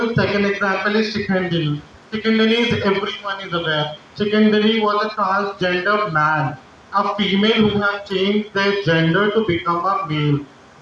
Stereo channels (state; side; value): identical; both; correlation 1.00